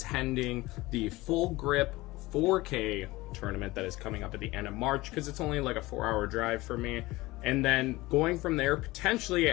the Full Grip 4K tournament that is coming up at the end of March, because it's only like a 4-hour drive for me, and then going from there, potentially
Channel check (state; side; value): quieter; right; 20.0 dB